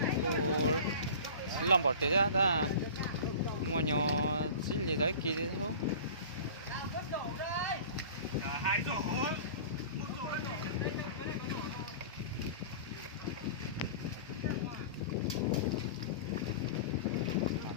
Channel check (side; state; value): both; inverted; correlation -0.38